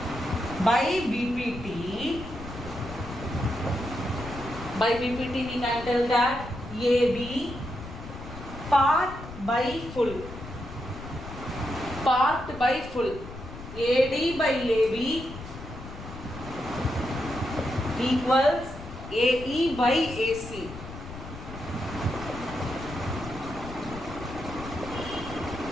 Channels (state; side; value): noise; left; rumble, 12 dB below the sound